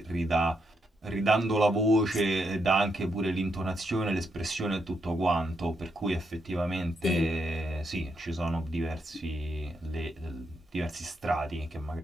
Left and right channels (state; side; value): normal; both; correlation 0.80